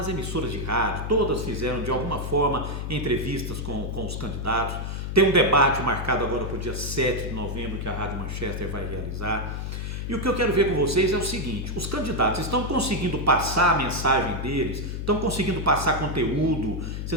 emissoras de rádio, todas fizeram de alguma forma entrevistas com os candidatos. Tem um debate marcado agora para o dia 7 de novembro que a Rádio Manchester vai realizar. E o que eu quero ver com vocês é o seguinte: os candidatos estão conseguindo passar a mensagem deles, estão conseguindo passar conteúdo.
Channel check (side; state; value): left; noise; hum, 4 dB below the sound